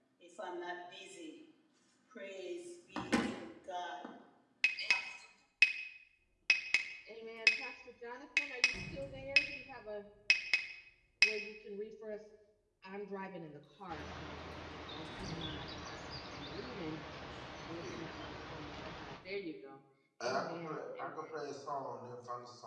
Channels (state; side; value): identical; both; correlation 1.00